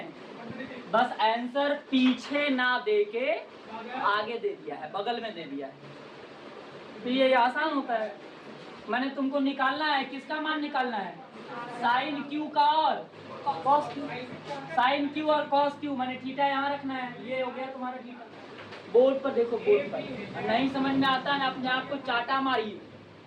बस आंसर पीछे ना दे के आगे दे दिया है, बगल में दे दिया है, तो ये आसान होता है। मैंने तुमको निकालना है, किसका मान निकालना है? साइन क्यू का और कॉस क्यू। साइन क्यू और कॉस क्यू, मैंने थीटा यहाँ रखना है। ये हो गया तुम्हारा थीटा। बोर्ड पर देखो, बोर्ड पर नहीं समझ में आता है अपने आप को चाटा मारिए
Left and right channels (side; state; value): both; identical; correlation 1.00